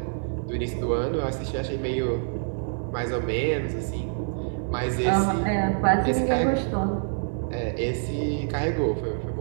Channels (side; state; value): left; silent; digital silence